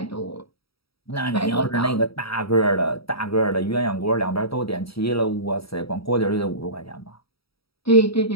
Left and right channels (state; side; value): late; right; 0.76 ms